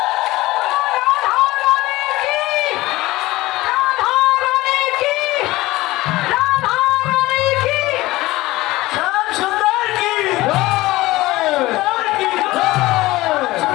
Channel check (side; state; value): right; quieter; 18.6 dB